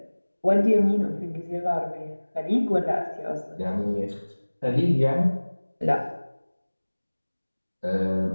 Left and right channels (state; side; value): inverted; both; correlation -1.00